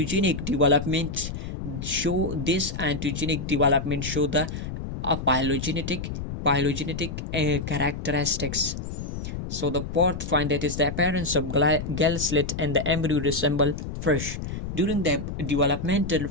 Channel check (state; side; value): noise; left; rumble, 6 dB below the sound